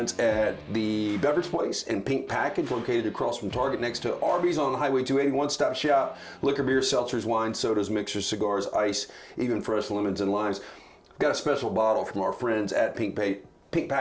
at the Beverage Place and Pink Package, located across from Target next to Arby's on Highway 280. One-stop shop, liquor, beer, seltzers, wine, sodas, mixers, cigars, ice, even fresh lemons and limes. We've got a special bottle from our friends at Pink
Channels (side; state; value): both; identical; correlation 1.00